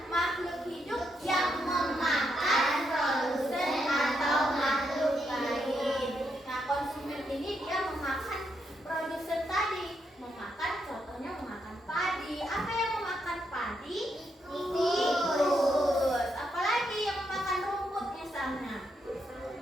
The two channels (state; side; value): normal; both; correlation 0.80